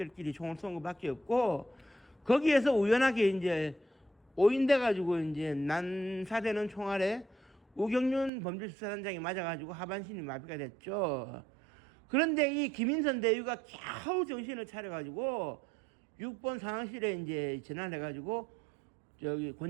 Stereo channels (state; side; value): drops out; left; at 8.3 s